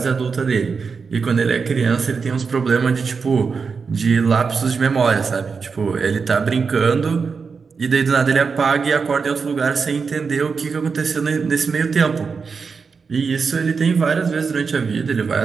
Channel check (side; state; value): left; quieter; 5.3 dB